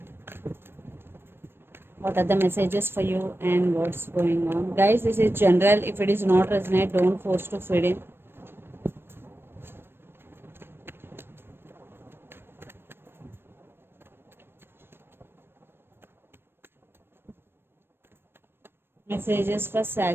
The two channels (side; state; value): left; late; 0.11 ms